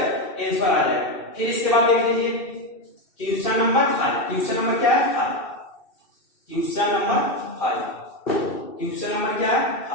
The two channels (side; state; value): right; late; 2.6 ms